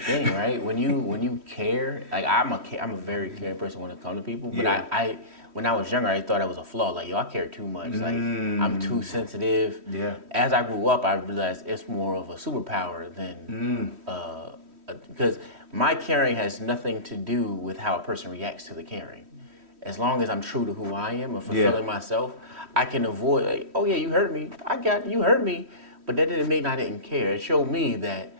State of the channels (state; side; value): late; left; 3.1 ms